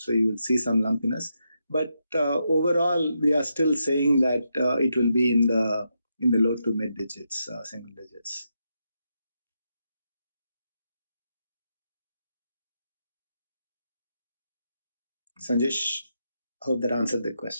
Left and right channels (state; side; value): inverted; both; correlation -0.84